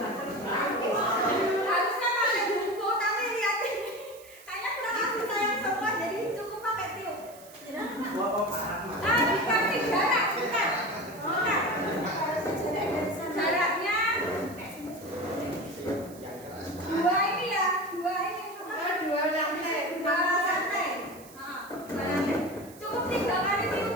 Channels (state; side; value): noise; right; hiss, 21 dB below the sound